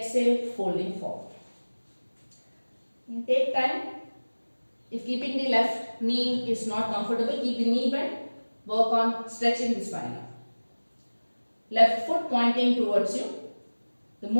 folding forward. And take time. If keeping the left knee is not comfortable, keep the knee bent. Work on stretching the spine out. Left foot pointing towards you. The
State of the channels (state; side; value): inverted; both; correlation -1.00